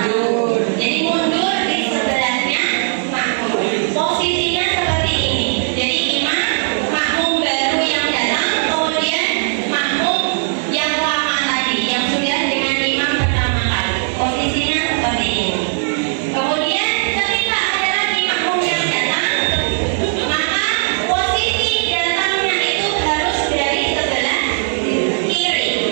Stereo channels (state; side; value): silent; left; 68 dB below the other